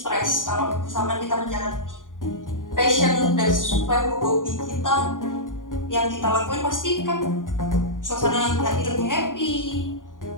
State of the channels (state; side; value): late; right; 0.88 ms